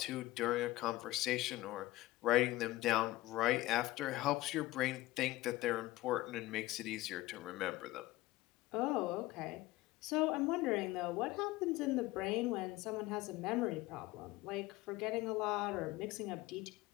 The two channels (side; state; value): right; quieter; 18.0 dB